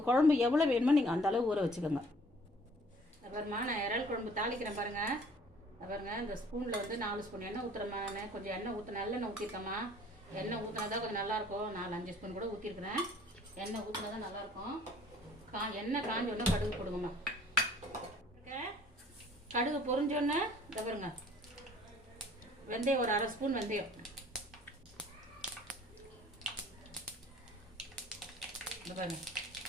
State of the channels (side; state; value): both; normal; correlation 0.54